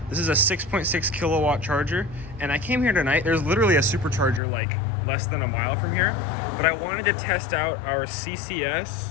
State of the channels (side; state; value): right; drops out; at 4.4 s